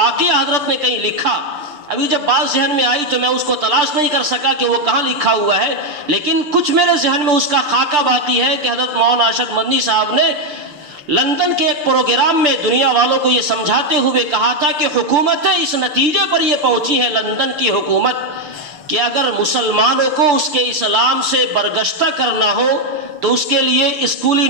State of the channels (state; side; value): late; left; 6.8 ms